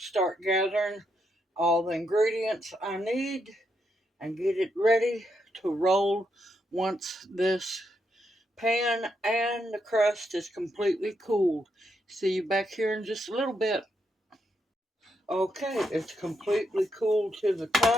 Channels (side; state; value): both; normal; correlation 0.80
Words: start gathering all the ingredients I need and get it ready to roll once this pan and the crust is completely cooled. See you back here in just a little bit. Okay, it's completely cooled to the